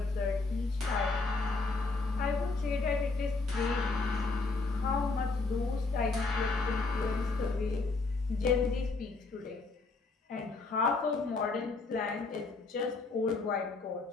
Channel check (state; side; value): quieter; right; 3.7 dB